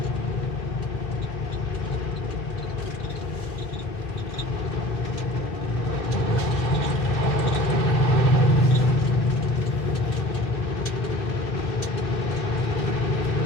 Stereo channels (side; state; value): both; normal; correlation 0.43